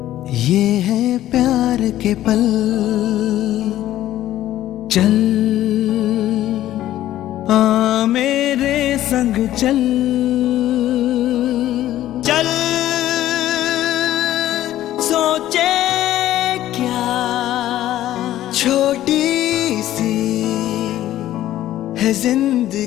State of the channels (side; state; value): right; quieter; 13.5 dB